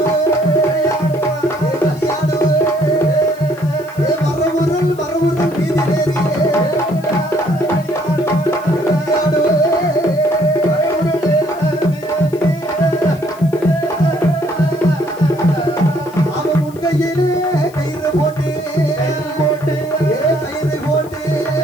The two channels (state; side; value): noise; left; hiss, 24 dB below the sound